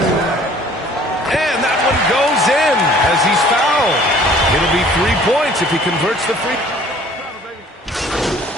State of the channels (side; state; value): both; normal; correlation 0.53